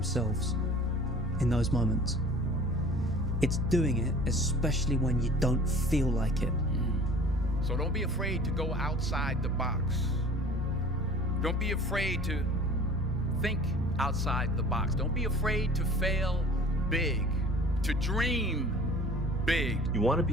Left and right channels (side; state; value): both; normal; correlation 0.45